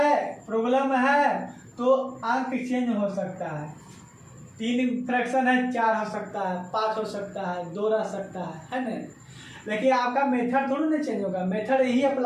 प्रॉब्लम है, तो अंक चेंज हो सकता है। 3 फ्रैक्शन है, 4 हो सकता है, 5 हो सकता है, 2 रह सकता है ना? लेकिन आपका मेथड थोड़ा नहीं चेंज होगा, मेथड यही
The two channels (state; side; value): identical; both; correlation 1.00